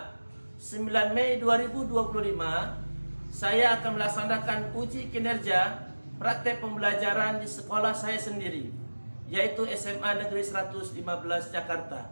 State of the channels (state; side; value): inverted; both; correlation -1.00